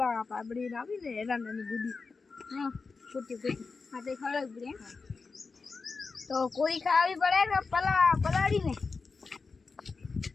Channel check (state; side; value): quieter; right; 4.4 dB